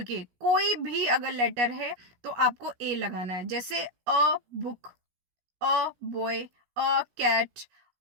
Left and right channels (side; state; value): left; late; 17 ms